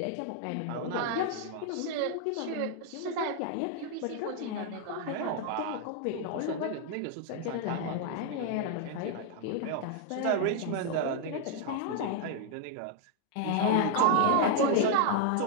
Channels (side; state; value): both; different; correlation 0.00